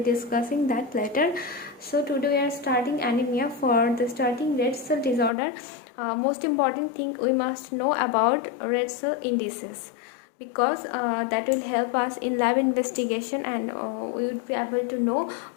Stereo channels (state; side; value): drops out; right; at 5.3 s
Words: discussing that later. So today we are starting anemia. For the starting red cell disorder, most important thing we must know about red cell indices, because that will help us in lab investigation, and we would be able to know